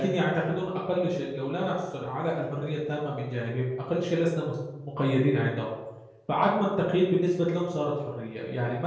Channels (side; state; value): both; identical; correlation 1.00